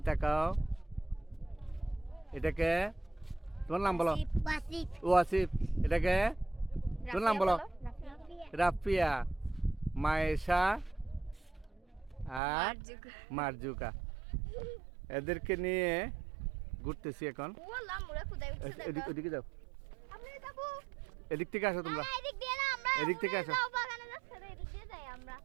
তাকাও। এটাকে তোমার নাম বলো। আসিফ, আসিফ। ও আসিফ। এটাকে তোর নাম বলো। রাফিয়া, মায়েশা আর মারজুকা। এদেরকে নিয়ে ঘুরতেছি এখন। ওদিকে যাও, এদিক থেকে আসো তোমরা, এদিক থেকে আসো।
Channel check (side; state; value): left; drops out; at 12.4 s